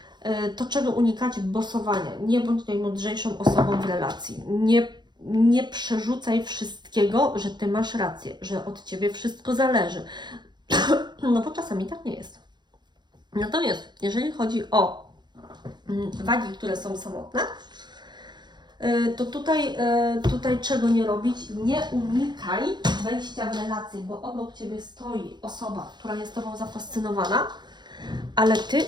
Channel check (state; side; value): late; left; 0.21 ms